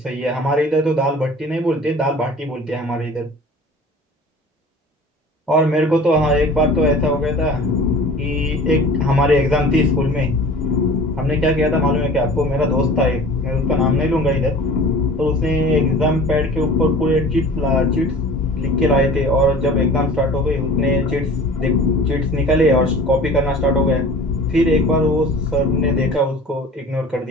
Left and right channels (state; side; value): normal; both; correlation 0.43